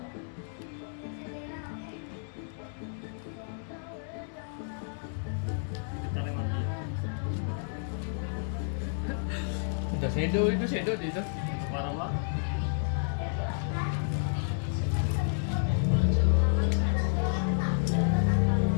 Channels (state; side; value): silent; right; digital silence